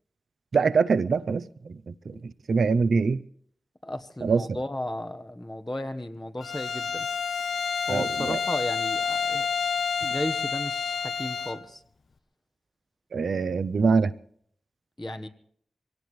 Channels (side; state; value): both; normal; correlation 0.84